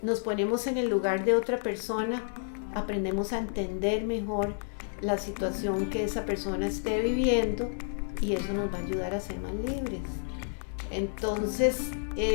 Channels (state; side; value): silent; right; digital silence